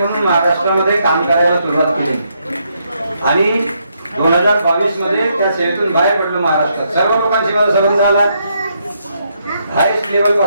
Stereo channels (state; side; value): inverted; both; correlation -0.77